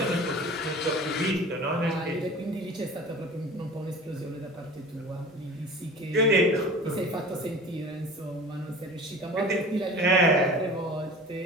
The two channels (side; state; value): both; normal; correlation 0.39